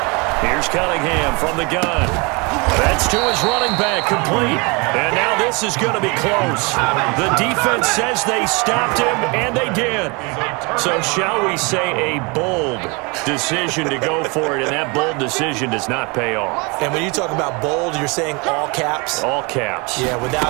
Here's Cunningham from the gun. That's to his running back, complete. And now this is going to be close. The defense says they stopped him, and they did. So shall we say a bold decision to go for it, and that bold decision does not pay off. And when you talk about bold, you're saying all caps? All caps. Yeah,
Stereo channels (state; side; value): quieter; left; 29.2 dB